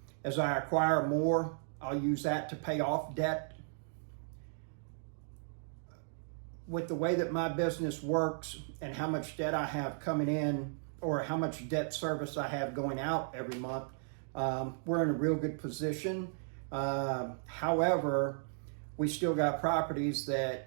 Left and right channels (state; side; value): silent; left; digital silence